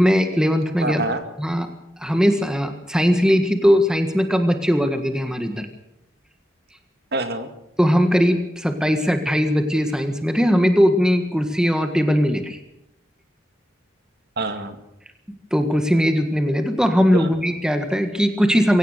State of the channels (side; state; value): both; normal; correlation 0.90